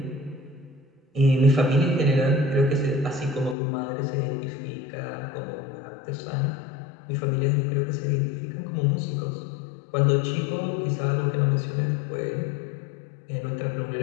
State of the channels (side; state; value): right; drops out; at 3.6 s